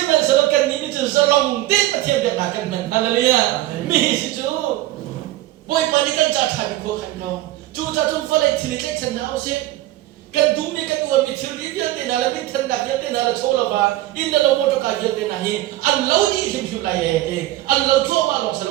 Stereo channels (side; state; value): left; quieter; 15.9 dB